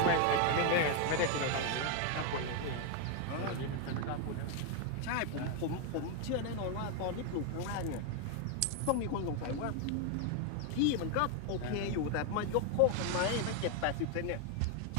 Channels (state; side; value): different; both; correlation 0.01